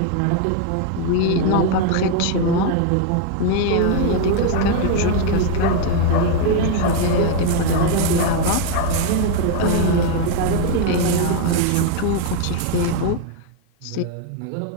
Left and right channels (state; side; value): different; both; correlation 0.00